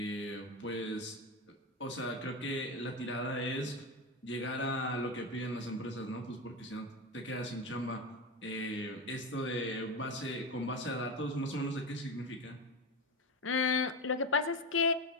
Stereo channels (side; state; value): both; normal; correlation 0.18